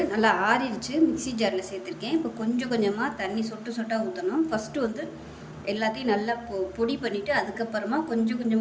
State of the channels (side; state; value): both; identical; correlation 1.00